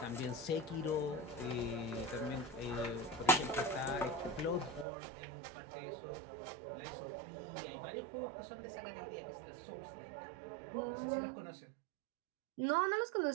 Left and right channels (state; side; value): drops out; left; at 4.9 s